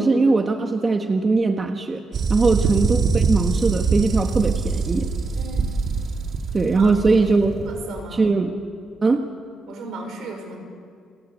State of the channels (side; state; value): left; quieter; 3.5 dB